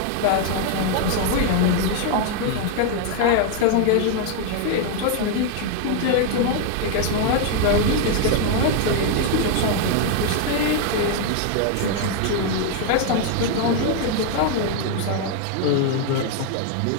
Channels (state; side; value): different; both; correlation 0.00